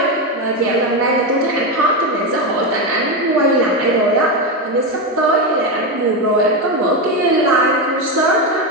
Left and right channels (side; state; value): both; normal; correlation 0.12